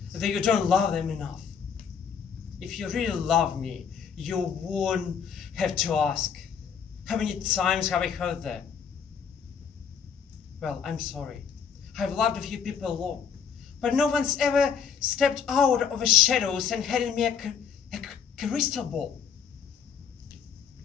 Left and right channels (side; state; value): right; quieter; 7.1 dB